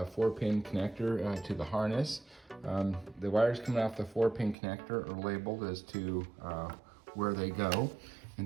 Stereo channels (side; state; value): left; drops out; at 4.5 s